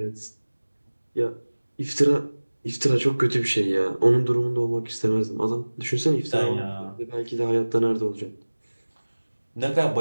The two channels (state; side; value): inverted; both; correlation -1.00